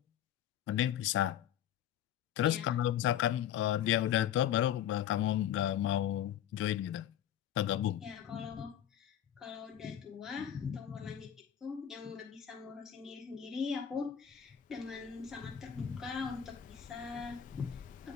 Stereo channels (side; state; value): right; quieter; 10.3 dB